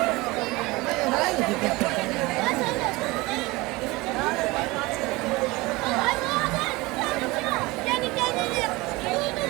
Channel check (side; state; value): left; quieter; 22.3 dB